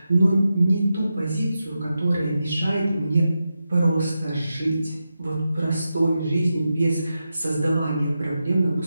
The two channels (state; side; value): inverted; both; correlation -0.89